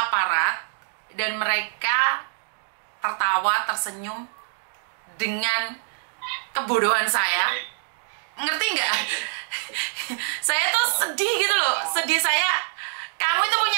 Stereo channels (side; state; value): left; silent; 61 dB below the other